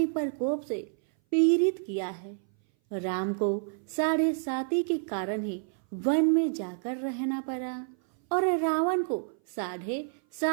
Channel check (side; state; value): left; silent; 57 dB below the other